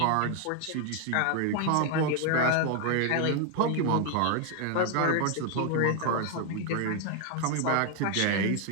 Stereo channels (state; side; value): different; both; correlation 0.00